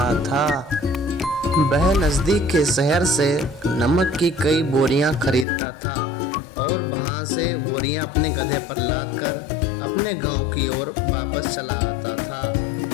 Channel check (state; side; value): drops out; right; at 5.5 s